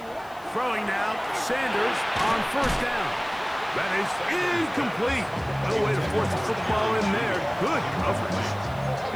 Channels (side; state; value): left; noise; hiss, 26 dB below the sound